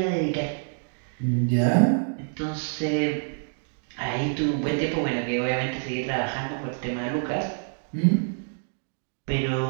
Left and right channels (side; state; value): left; silent; 60 dB below the other